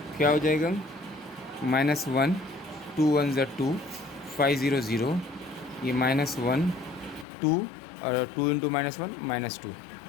क्या हो जाएगा, माइनस 1 2 1 ज़ा 2 5 0 0. ये माइनस 1 2 और 2 इंटू माइनस 1 माइनस 2.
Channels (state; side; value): drops out; right; at 7.2 s